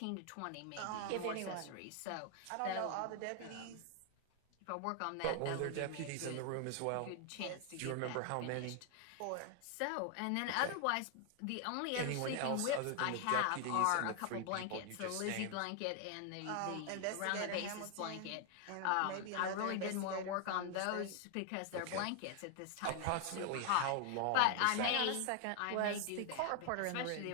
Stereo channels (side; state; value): both; different; correlation 0.00